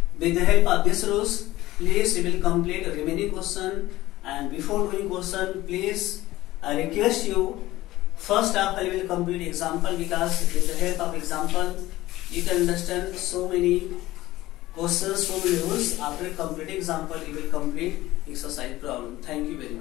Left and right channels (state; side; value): quieter; right; 16.9 dB